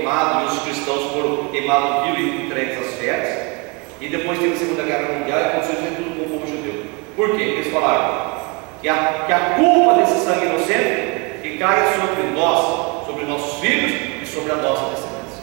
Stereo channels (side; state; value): left; quieter; 29.8 dB